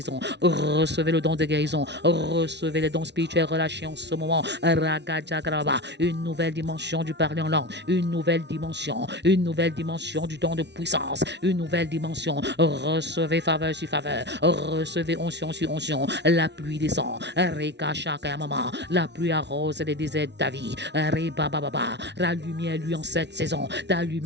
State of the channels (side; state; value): left; late; 0.50 ms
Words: recevez le don de guérison, recevez les dons spirituels relâchés en ce moment, Ragajagraba, une nouvelle dimension du parler en langue, une nouvelle dimension du don de puissance, une nouvelle dimension, recevez Recevez faveur sur faveur. Recevez onction sur onction. La pluie descend. Reka Shaka Mama. La pluie arrose les déserts de ta vie. Reba Baba. La lumière lui en cette saison. Ta